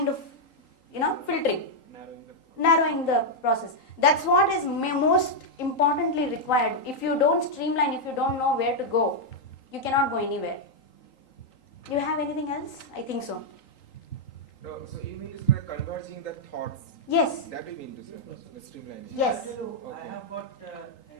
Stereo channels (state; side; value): late; right; 3.8 ms